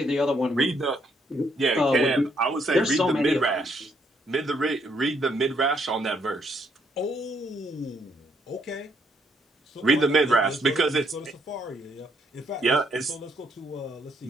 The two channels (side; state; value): both; normal; correlation 0.71